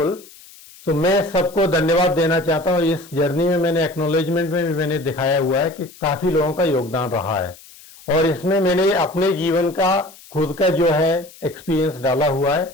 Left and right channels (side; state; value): left; noise; hiss, 22 dB below the sound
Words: So मैं सबको धन्यवाद देना चाहता हूँ. इस जर्नी में मैंने एक्नॉलेजमेंट में भी मैंने दिखाया हुआ है कि काफी लोगों का योगदान रहा है, और इसमें मैंने अपने जीवन का खुद का जो है एक्सपीरियंस डाला हुआ है,